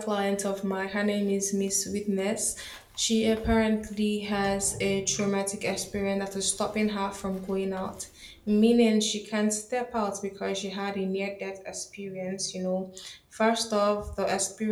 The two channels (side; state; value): both; identical; correlation 1.00